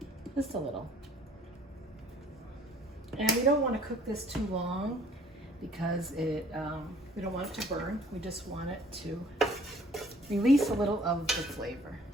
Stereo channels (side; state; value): both; normal; correlation 0.56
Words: Just a little. And we don't want to cook this too long because we don't want it to burn. We just want it to release a little of the flavor.